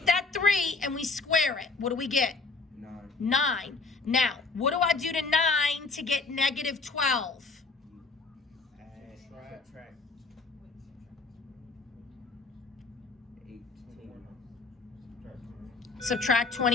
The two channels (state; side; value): quieter; right; 4.0 dB